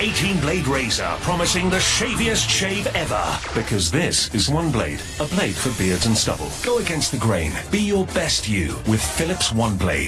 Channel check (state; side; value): identical; both; correlation 1.00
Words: razor promising the shaviest shave ever. Because this is one blade, a blade for beards and stubble. Go against the grain. Be your best you with Philips One